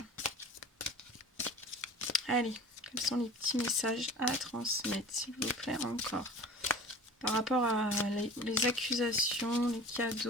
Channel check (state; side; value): normal; both; correlation 0.41